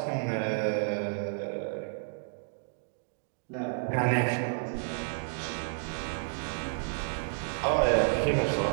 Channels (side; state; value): left; silent; digital silence